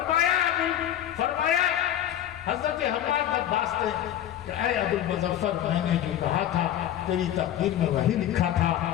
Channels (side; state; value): right; quieter; 11.4 dB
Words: حضرت حماد طباس نے کہ اے ابو المظفر، میں نے جو کہا تھا تیری تقدیر میں وہی لکھا تھا،